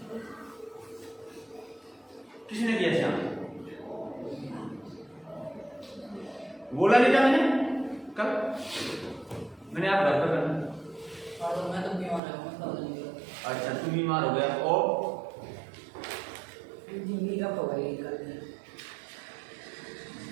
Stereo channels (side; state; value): left; drops out; at 12.2 s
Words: किसने किया श्याम बोला नहीं था मैंने कल मैंने आप घर पर करना मैं तो बीमार हूं अच्छा तू बीमार हो गया और जिंदगी का पवाई कर